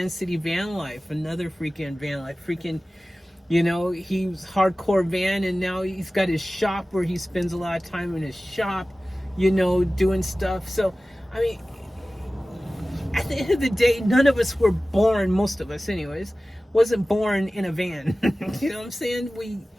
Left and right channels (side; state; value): both; normal; correlation 0.96